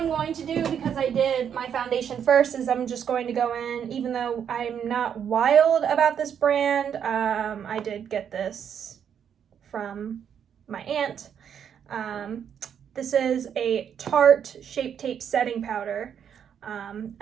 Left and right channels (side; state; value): left; quieter; 8.3 dB